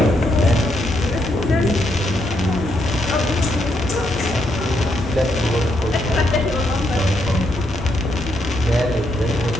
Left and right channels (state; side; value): normal; both; correlation 0.77